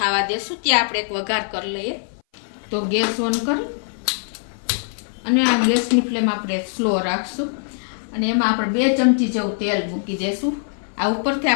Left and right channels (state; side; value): silent; right; 59 dB below the other